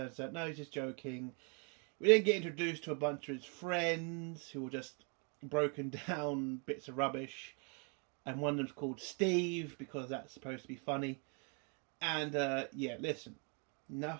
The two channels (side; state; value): left; quieter; 36.9 dB